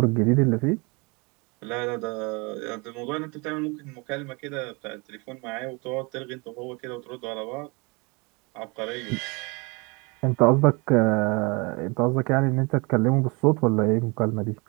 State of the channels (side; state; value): left; quieter; 28.8 dB